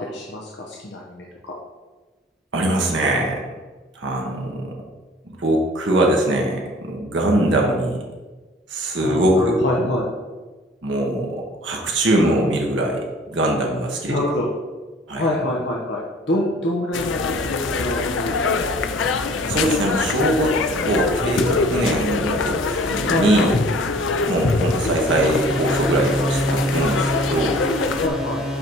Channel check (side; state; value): both; normal; correlation 0.50